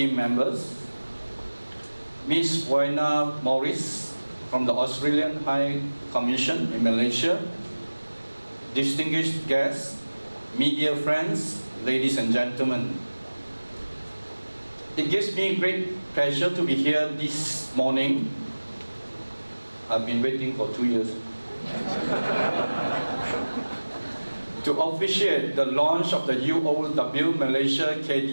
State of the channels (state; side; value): inverted; both; correlation -1.00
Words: members, Ms. Wayna Morris, from the Australian High Commission in Malaysia, distinguished guests, media friends, ladies and gentlemen. It gives me great pleasure to be here this morning. I've been waiting for 2 years. To officiate the launch of the UOW Malaysia